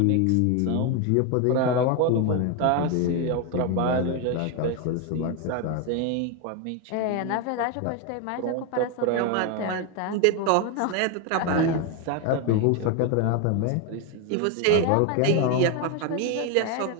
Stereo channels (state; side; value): different; both; correlation 0.02